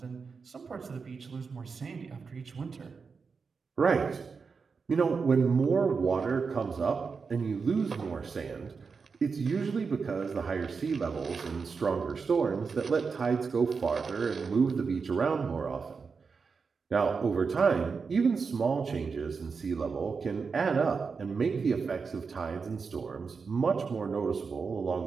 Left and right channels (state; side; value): quieter; left; 5.2 dB